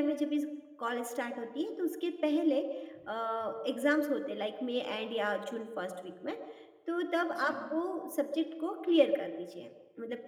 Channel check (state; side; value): identical; both; correlation 1.00